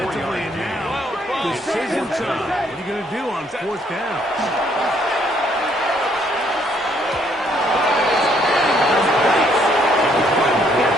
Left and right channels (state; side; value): normal; both; correlation 0.67